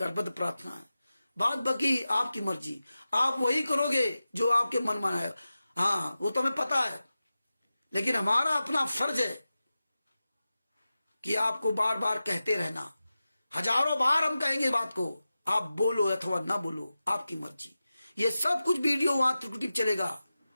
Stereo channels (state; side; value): inverted; both; correlation -0.94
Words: प्रार्थना है। बात बाकी आपकी मर्जी, आप वही करोगे जो आपके मन में आएगा। हाँ वो तो हमें पता है, लेकिन हमारा अपना फर्ज है कि आपको बार बार कहते रहना। हजारों बार हम कहेंगे बात को, आप बोलो अथवा ना बोलो, आपकी मर्जी। ये सब कुछ वीडियो वहां त्रिकुटिप चलेगा,